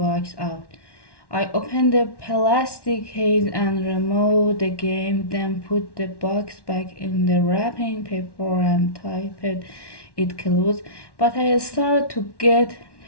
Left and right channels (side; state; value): right; late; 1.1 ms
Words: out. I opened the plastic case and removed the game, then put the box back in the wrapping paper and typed it closed. But I started to get